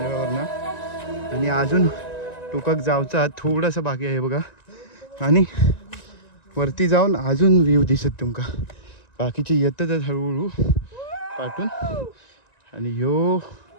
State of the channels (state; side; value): late; right; 1.9 ms